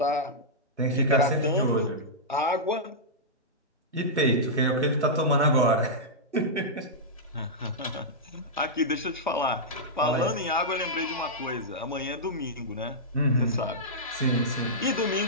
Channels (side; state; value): both; normal; correlation -0.12